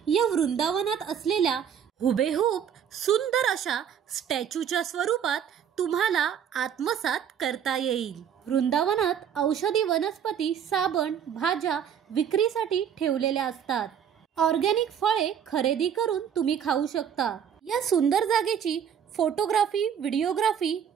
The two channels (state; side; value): quieter; left; 8.4 dB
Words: या वृंदावनात असलेल्या हुबेहूब सुंदर अशा स्टॅच्यूच्या स्वरूपात तुम्हाला आत्मसात करता येईल. वृंदावनात औषधी वनस्पती, साबण, भाज्या विक्रीसाठी ठेवलेल्या असतात. ऑर्गॅनिक फळे खरेदी करून तुम्ही खाऊ शकता. या सुंदर जागेची फोटोग्राफी, व्हिडिओग्राफी